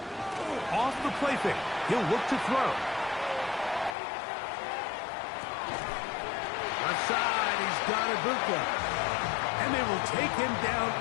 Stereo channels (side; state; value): right; drops out; at 4.0 s